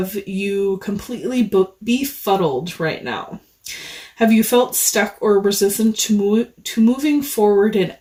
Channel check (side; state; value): both; identical; correlation 1.00